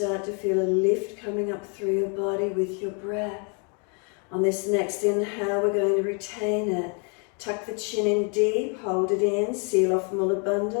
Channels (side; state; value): right; quieter; 37.4 dB